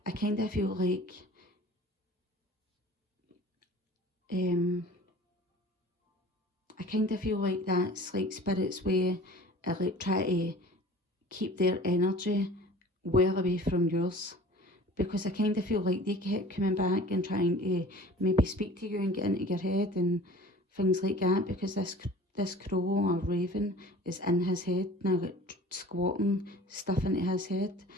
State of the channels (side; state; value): both; normal; correlation 0.44